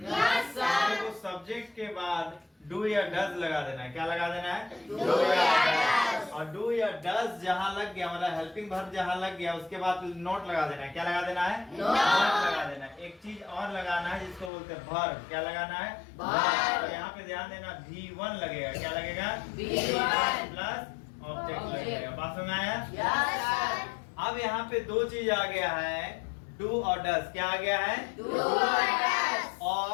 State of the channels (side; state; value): right; drops out; at 14.5 s